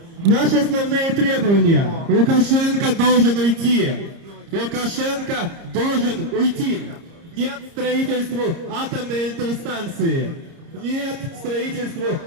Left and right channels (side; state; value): left; late; 30 ms